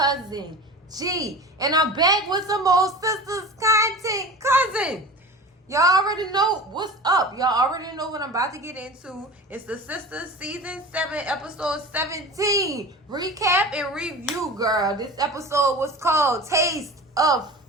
G. And I'm back with some more Sistas content. Cousin, y'all already know what's up. Y'all already know what I'm about to get into. It's the Sistas Season 7, Episode 17. Recap and review, girl. This episode was called Taste of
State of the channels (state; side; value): normal; both; correlation 0.34